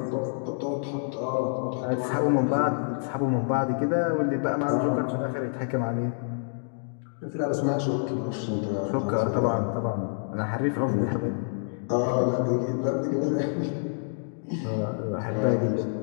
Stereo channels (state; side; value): silent; right; digital silence